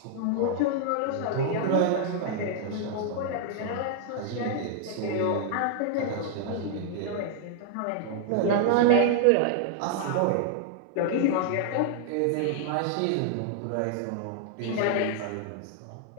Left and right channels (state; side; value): different; both; correlation -0.01